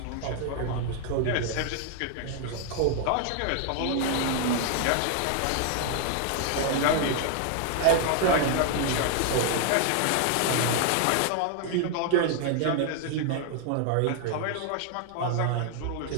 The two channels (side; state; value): both; different; correlation 0.00